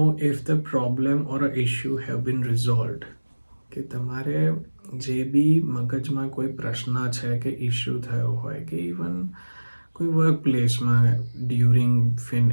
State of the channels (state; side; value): inverted; both; correlation -1.00